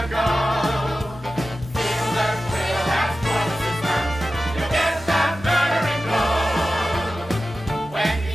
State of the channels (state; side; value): normal; both; correlation 0.94